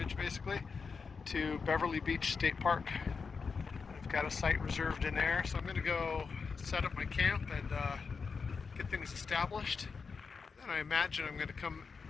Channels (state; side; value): quieter; right; 5.1 dB